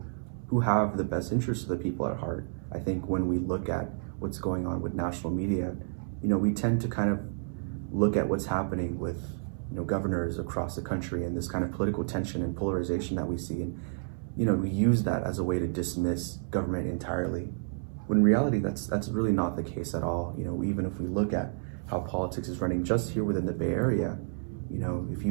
who have the best interests of the people at heart. I think when we look at what's going on with national media, we tend to kind of look at what's happening with governors across the country and this kind of political tension and polarization that we see, and we use that as a way to dismiss government entirely, when in reality that's really not the case at all. Even if we look at how politics is running just here within the Bay Area, if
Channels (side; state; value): left; silent; 58 dB below the other